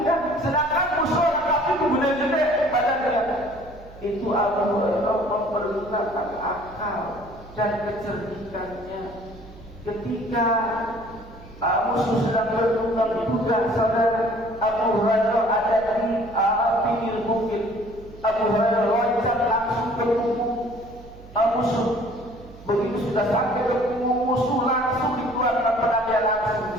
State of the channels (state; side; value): noise; right; hum, 20 dB below the sound